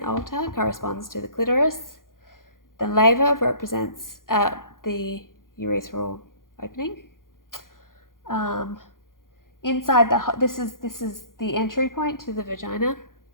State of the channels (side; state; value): right; late; 0.90 ms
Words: altar corresponds to the clitoris. The laver represents the urethral opening. Inside this is the entry point to the vagina.